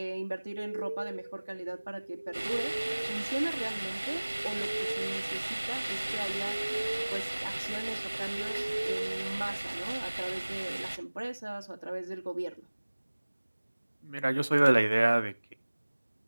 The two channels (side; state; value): both; inverted; correlation -1.00